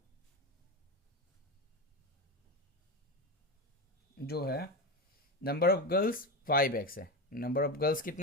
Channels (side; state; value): both; normal; correlation 0.18